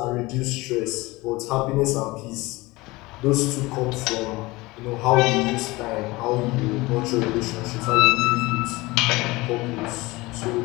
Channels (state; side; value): quieter; right; 21.6 dB